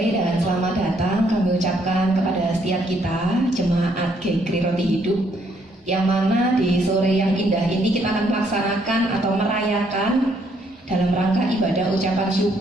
dan selamat datang kami ucapkan kepada setiap kita jemaat GKRI Roti Hidup, yang mana di sore yang indah ini kita akan melaksanakan atau merayakan dalam rangka ibadah ucapan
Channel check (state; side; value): normal; both; correlation 0.70